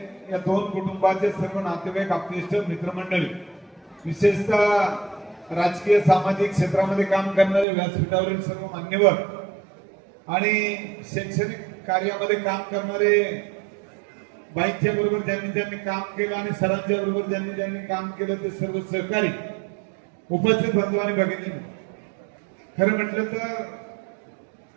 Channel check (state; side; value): drops out; left; at 7.7 s